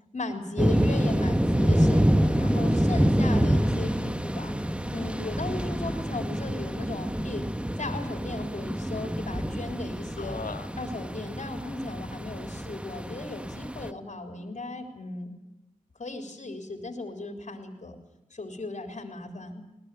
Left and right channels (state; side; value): normal; both; correlation 0.93